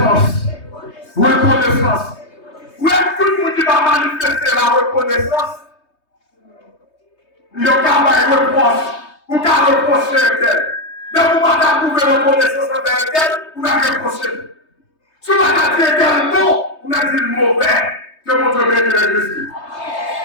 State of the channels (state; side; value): late; right; 3.2 ms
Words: Reconnaissance. Où est-ce que tout le monde qui va manifester la reconnaissance? Il y a un reproche. Ou qu'à reprocher tel. Mais vous ne pouvez pas trouver reconnaissance envers tel, vous n'avez reproché. Si vous avez dit tel mot, vous avez dit le mauvais. Que mon Dieu bénisse l'église.